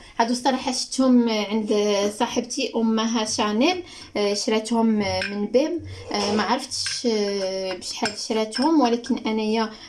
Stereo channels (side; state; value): both; identical; correlation 1.00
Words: الصراحه شفتهم عند صاحبتي امها شانيل، شراتهم من بيم، ما عرفتش بشحال شراتهم، ولكن انايا